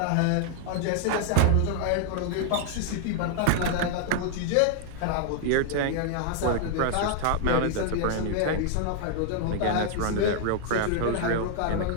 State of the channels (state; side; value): different; both; correlation 0.00